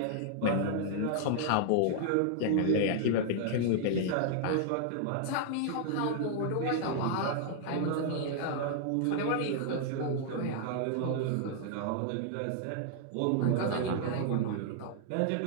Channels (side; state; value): both; different; correlation -0.01